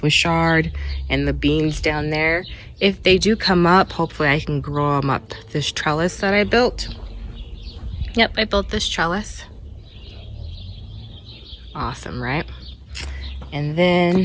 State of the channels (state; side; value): identical; both; correlation 1.00